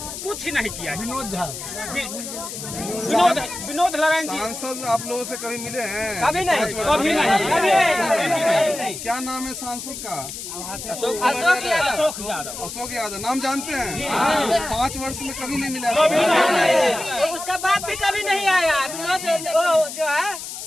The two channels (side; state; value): left; noise; hiss, 9 dB below the sound